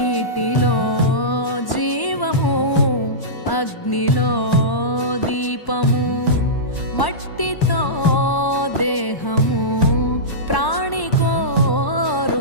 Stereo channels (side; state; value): right; late; 1.1 ms